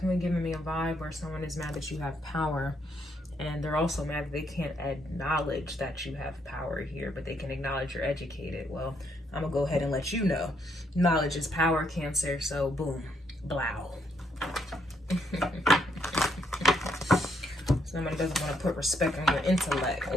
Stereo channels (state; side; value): normal; both; correlation 0.74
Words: giving me a vibe where someone is mad that you have power. And they're also mad that they can't acknowledge that you have power here, but they can acknowledge you're educated. Well, I'm going to go ahead and let you know. Knowledge is power, Cancer. So boom, blow. Somebody doesn't want to put respect on your intellect.